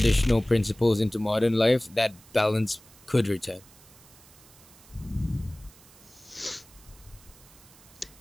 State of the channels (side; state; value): right; noise; hiss, 24 dB below the sound